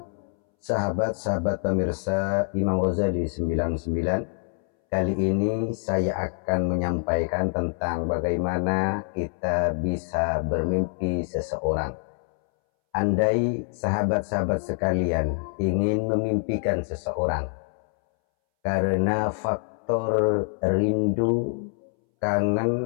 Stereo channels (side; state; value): right; silent; 61 dB below the other